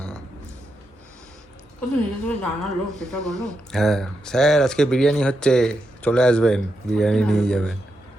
ও তো নিজে থেকে জানালো, সেটা বলো। হ্যাঁ স্যার আজকে বিরিয়ানি হচ্ছে, চলে আসবেন, বিরিয়ানি নিয়ে যাবেন।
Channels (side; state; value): both; normal; correlation 0.85